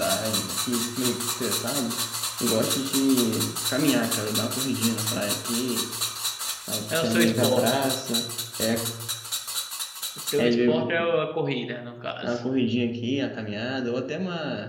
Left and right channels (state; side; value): identical; both; correlation 1.00